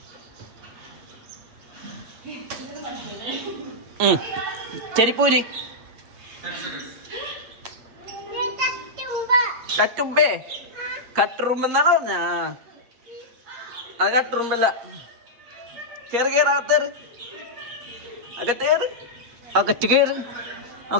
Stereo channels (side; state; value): left; late; 8.5 ms